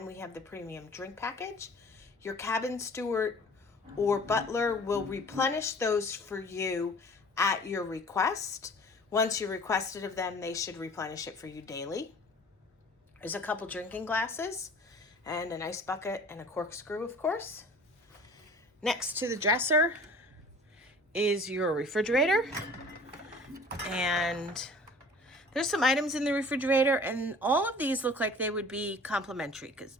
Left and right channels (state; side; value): normal; both; correlation 0.46